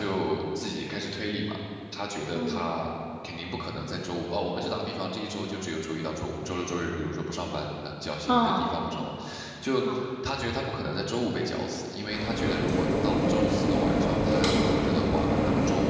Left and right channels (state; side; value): identical; both; correlation 1.00